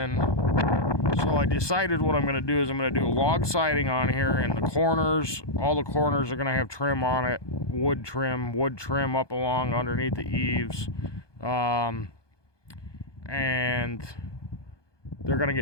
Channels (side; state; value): right; late; 1.2 ms